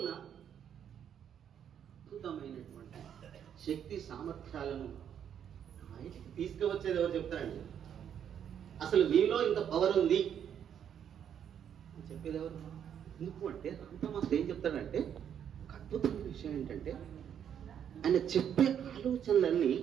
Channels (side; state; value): left; quieter; 8.9 dB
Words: అద్భుతమైనటువంటి శక్తి సామర్థ్యాలను బయటికి తీసుకువచ్చేది ఎవరు చెప్తారండి? అసలు మీలో ఇంత పవర్ ఉంది అని చెప్పేది ఎవరు? ఎందుకు అంటే రాంతమాస్ ఏం చెప్తాడంటే ఒక అద్భుతమైన విషయం ఏంటంటే ఆయన చెప్పే ఆలోచనలన్నీ